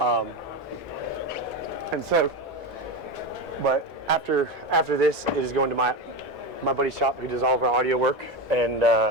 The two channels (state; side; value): normal; both; correlation 0.18